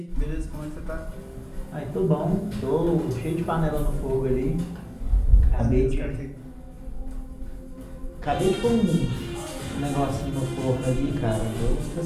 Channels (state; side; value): identical; both; correlation 1.00